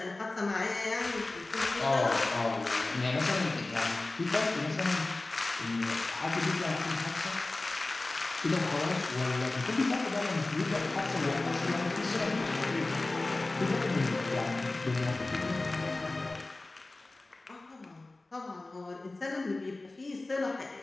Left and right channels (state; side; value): quieter; right; 3.1 dB